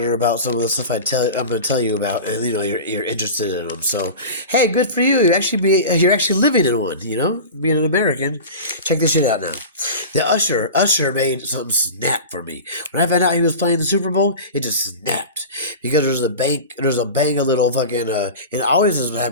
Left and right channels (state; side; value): inverted; both; correlation -0.31